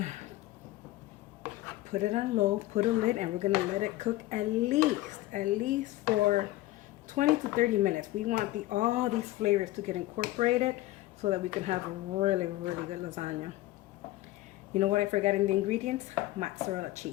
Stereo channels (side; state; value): right; quieter; 16.9 dB